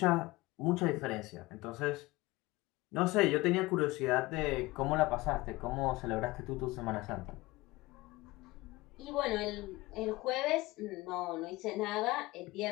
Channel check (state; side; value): quieter; right; 20.6 dB